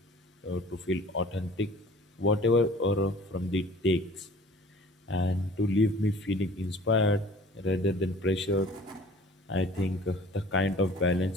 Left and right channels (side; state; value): both; normal; correlation 0.48